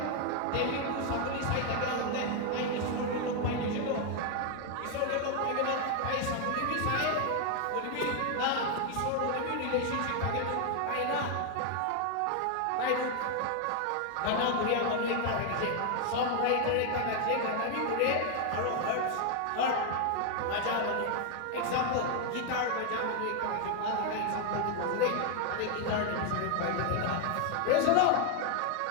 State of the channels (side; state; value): both; different; correlation 0.00